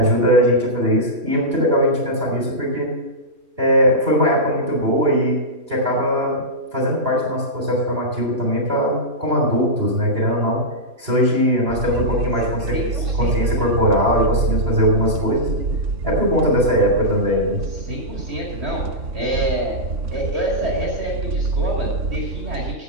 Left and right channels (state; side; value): late; left; 2.8 ms